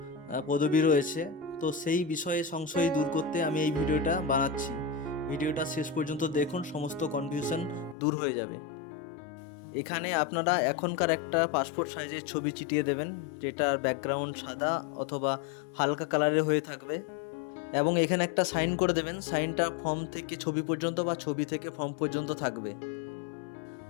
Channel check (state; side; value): drops out; right; at 8.0 s